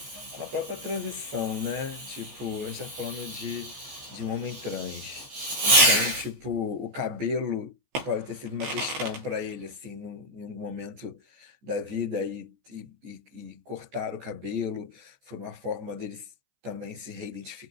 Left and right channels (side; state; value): left; late; 14 ms